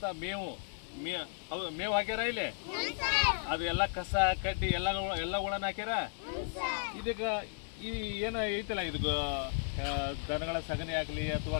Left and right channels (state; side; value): silent; right; digital silence